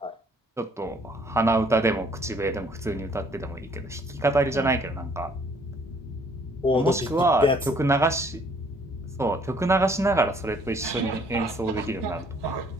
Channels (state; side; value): normal; both; correlation 0.61